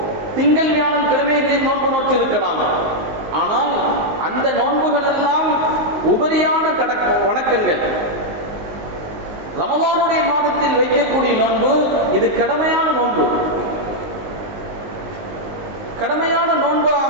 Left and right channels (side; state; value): left; late; 19 ms